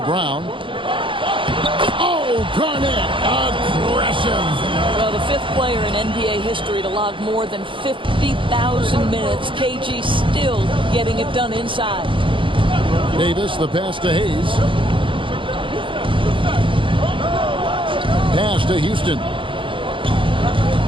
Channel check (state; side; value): late; left; 0.25 ms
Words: Brown. Oh, Garnett, aggressive. Well, the 5th player in NBA history to log more than 50,000 minutes. KG still getting it done inside. Davis, the pass to Hayes. Pass to Houston.